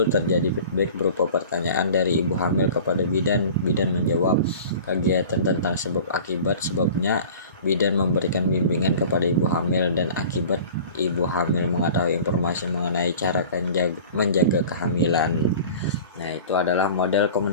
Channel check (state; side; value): inverted; both; correlation -0.41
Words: terjadi feedback berupa pertanyaan dari ibu hamil kepada bidan. Bidan menjawab kegiatan tentang sebab akibat, sebabnya bidan memberikan bimbingan kepada ibu hamil, dan akibat ibu hamil mengetahui informasi mengenai cara menjaga kehamilan. Nah, itu adalah model